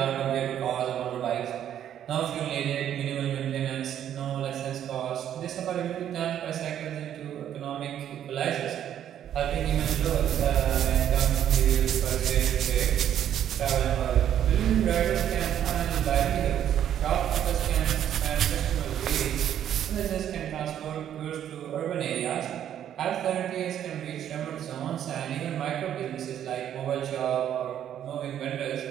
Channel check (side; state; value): left; quieter; 10.3 dB